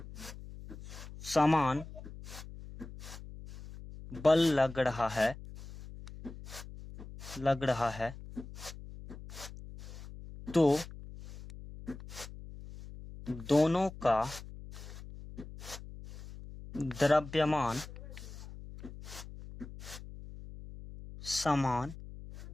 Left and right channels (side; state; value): left; noise; hum, 14 dB below the sound